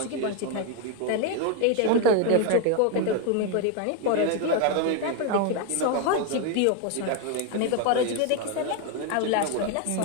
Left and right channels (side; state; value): both; different; correlation 0.01